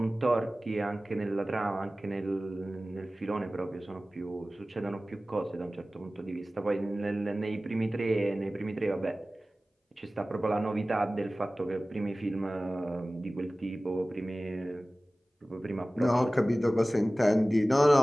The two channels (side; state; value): both; normal; correlation 0.97